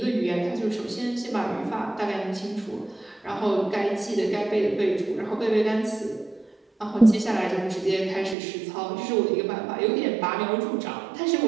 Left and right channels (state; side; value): drops out; left; at 8.3 s